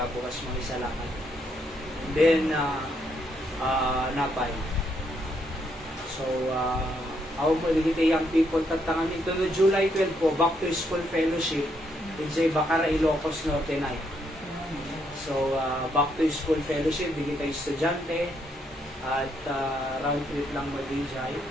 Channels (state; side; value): normal; both; correlation 0.75